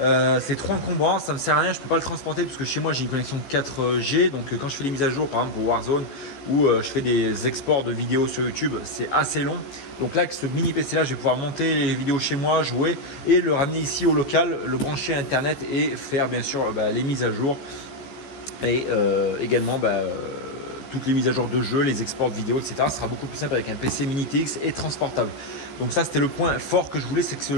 trop encombrant, ça me sert à rien, je peux pas le transporter parce que chez moi j'ai une connexion 4G. Donc quand je fais des mises à jour par exemple pour Warzone ou je fais des exports de vidéos sur YouTube, c'est assez long. Donc là avec ce mini PC là je vais pouvoir monter les vidéos chez moi, jouer et le ramener ici au local, le brancher à internet et faire bien sûr les mises à jour et également toutes les mises à jour de jeux, les exports de vidéos, etc. Ce sera beaucoup plus simple avec un PC mini TX et transportable. Donc ça c'était le point fort que je voulais, c'est que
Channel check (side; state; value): right; late; 14 ms